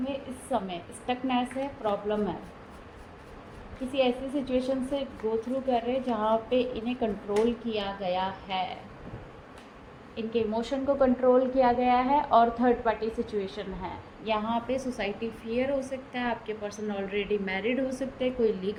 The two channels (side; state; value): both; identical; correlation 1.00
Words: इस समय स्टकनेस है, प्रॉब्लम है, किसी ऐसी सिचुएशन से गो थ्रू कर रहे हैं जहाँ पे इन्हें कंट्रोल किया गया है, इनके इमोशन को कंट्रोल किया गया है और थर्ड पार्टी सिचुएशन है। यहाँ पे सोसाइटी फियर हो सकता है, आपके पर्सन ऑलरेडी मैरिड हो सकते हैं, कोई